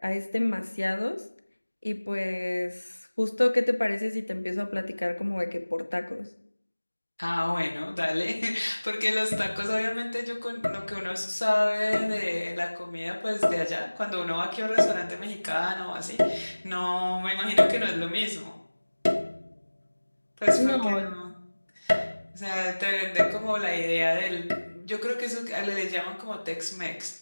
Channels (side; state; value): both; inverted; correlation -1.00